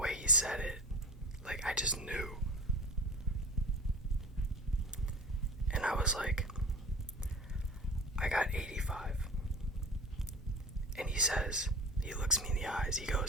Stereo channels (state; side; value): normal; both; correlation 0.35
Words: he said it, like, I just knew. And I was like, I got 85. And he looks me in the eyes, he